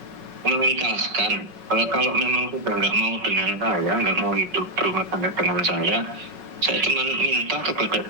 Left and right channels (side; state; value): left; late; 5.4 ms